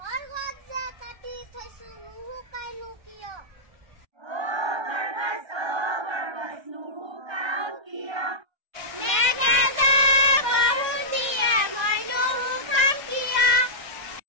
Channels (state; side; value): late; left; 1.5 ms